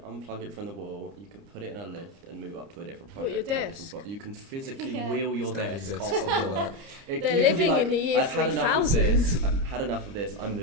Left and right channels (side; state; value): left; late; 30 ms